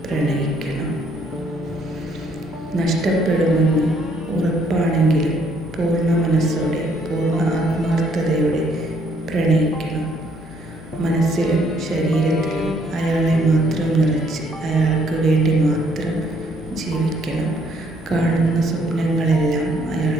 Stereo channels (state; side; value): normal; both; correlation 0.67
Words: പ്രണയിക്കണം. നഷ്ടപ്പെടുമെന്ന് ഉറപ്പാണെങ്കിലും പൂർണ്ണ മനസ്സോടെ, പൂർണ്ണ ആത്മാർത്ഥതയോടെ പ്രണയിക്കണം. മനസ്സിലും ശരീരത്തിലും അയാളെ മാത്രം നിറച്ച് അയാൾക്ക് വേണ്ടി മാത്രം ജീവിക്കണം. കാണുന്ന സ്വപ്നങ്ങളെല്ലാം